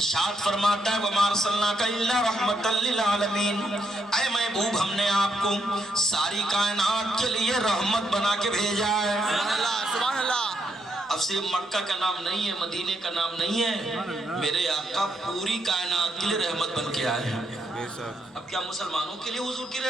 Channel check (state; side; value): normal; both; correlation 0.77